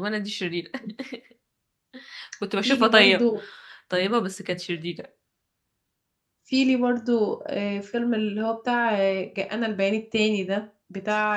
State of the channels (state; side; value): identical; both; correlation 1.00